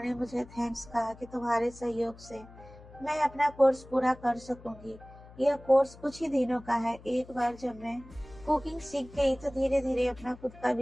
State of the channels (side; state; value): left; noise; hum, 20 dB below the sound